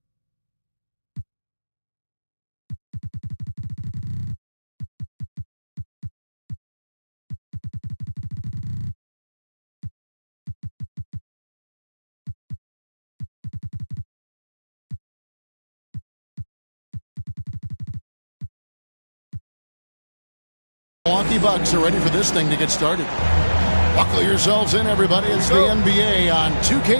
Milwaukee Bucks are ready for this thing to get started. Buckle yourselves in, everybody. It's the NBA on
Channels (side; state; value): both; inverted; correlation -1.00